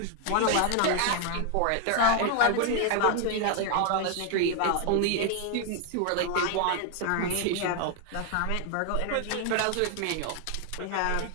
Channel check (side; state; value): both; different; correlation 0.01